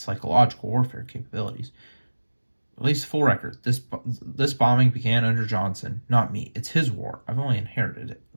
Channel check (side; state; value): both; inverted; correlation -1.00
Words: warfare capabilities. At least full record, this bombing began under Johnson, not me. It's his war. I've only inherited it.